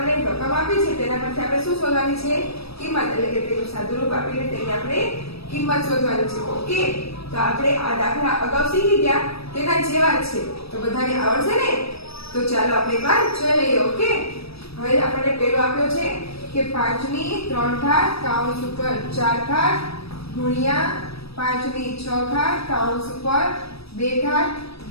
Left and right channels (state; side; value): late; right; 0.77 ms